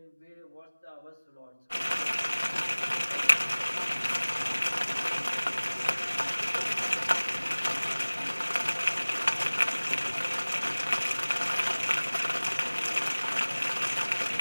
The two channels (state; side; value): inverted; both; correlation -1.00